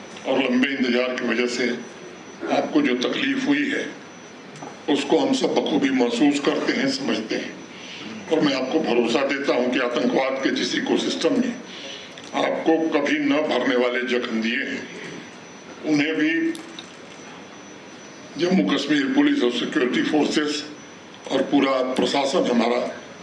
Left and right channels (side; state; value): both; identical; correlation 1.00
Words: और लंबे इंतजार की वजह से आपको जो तकलीफ हुई है उसको हम सब बखूबी महसूस करते हैं, समझते हैं, और मैं आपको भरोसा देता हूं कि आतंकवाद के जिस इकोसिस्टम में आपको कभी न भरने वाले जख्म दिए हैं, उन्हें भी जम्मू कश्मीर पुलिस और सिक्योरिटी फोर्सेस और पूरा प्रशासन हमारा